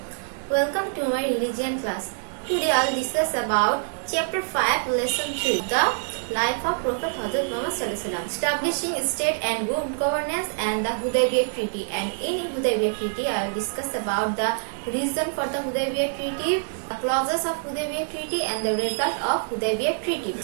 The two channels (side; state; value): left; silent; 61 dB below the other